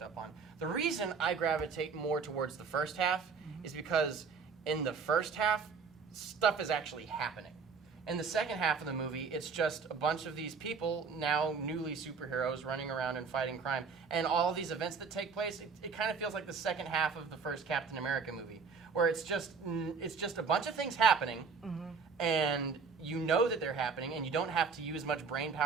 up on. The reason I gravitate more towards the first half is because in the first half, stuff is actually happening. In the second half of the movie, it's just a bunch of these people, now newly superheroes, running around and fighting crime. And all these events that take place, it kind of feels like the second half of the first Captain America movie, where it's just a bunch of things happening, and you know that they're happening, and you don't have to use much brain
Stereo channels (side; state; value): left; quieter; 5.4 dB